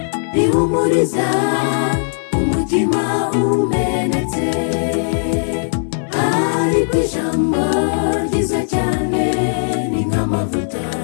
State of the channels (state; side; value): silent; right; digital silence